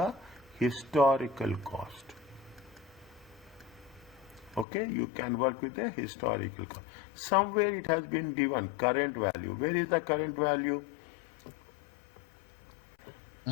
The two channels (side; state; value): right; drops out; at 4.7 s